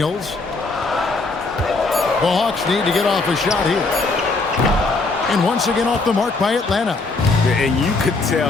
The Hawks need to get off a shot here. And once again off the mark by Atlanta. And you could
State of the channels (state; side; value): quieter; right; 3.7 dB